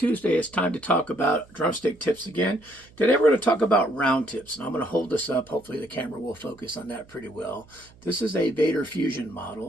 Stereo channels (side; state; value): right; noise; hum, 26 dB below the sound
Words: It's time to talk about drumstick tips again. Today we're going to talk about round tips, and I'm going to hold this up. Hopefully the camera will focus on that pretty well. This is a Vader Fusion